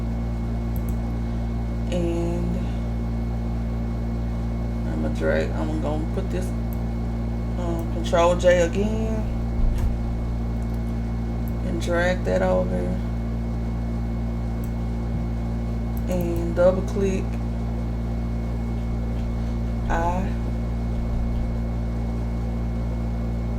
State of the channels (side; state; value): both; identical; correlation 1.00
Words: And I'm gonna put this Control J again and drag that over and double click. I